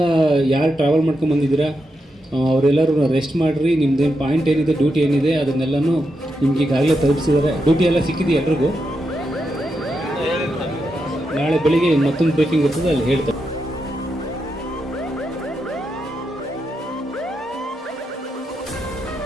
ಯಾರು ಟ್ರಾವೆಲ್ ಮಾಡ್ಕೊಂಡು ಬಂದಿದ್ದೀರಾ ಅವರೆಲ್ಲರೂ ರೆಸ್ಟ್ ಮಾಡಿರಿ. ನಿಮ್ಮದೇನು ಪಾಯಿಂಟ್ ಏನಿದೆ, ಡ್ಯೂಟಿ ಏನಿದೆ ಅದನ್ನೆಲ್ಲನೂ ನಿಮ್ಗೆ ಈಗಾಗಲೇ ತಲುಪಿಸಿದ್ದಾರೆ. ಡ್ಯೂಟಿ ಎಲ್ಲ ಸಿಕ್ಕಿದೆ ಎಲ್ರಿಗೂ. ನಾಳೆ ಬೆಳಿಗ್ಗೆ ಮತ್ತೊಂದು ಬ್ರೀಫಿಂಗ್ ಇರ್ತದೆ, ಅಲ್ಲಿ ಹೇಳ್ತಾರೆ.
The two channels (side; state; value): both; normal; correlation 0.85